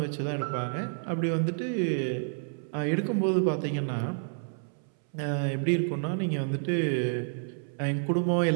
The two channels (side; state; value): left; silent; 58 dB below the other